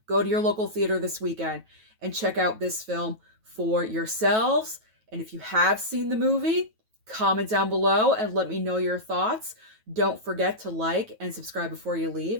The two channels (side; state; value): left; late; 9.2 ms